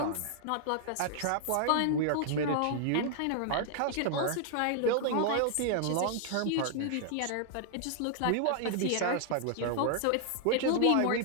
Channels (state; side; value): different; both; correlation 0.00